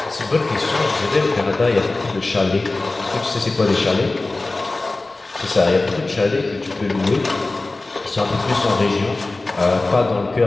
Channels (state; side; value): quieter; right; 3.2 dB